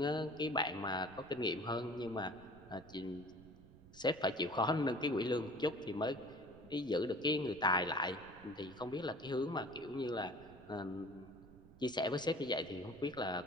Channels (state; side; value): noise; right; rumble, 21 dB below the sound